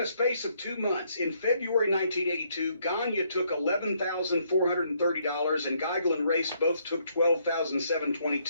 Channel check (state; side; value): inverted; both; correlation -0.71